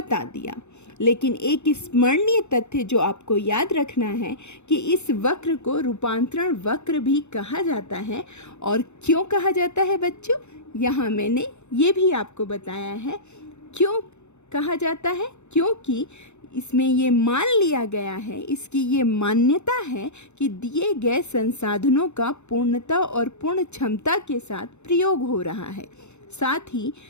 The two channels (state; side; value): late; right; 0.82 ms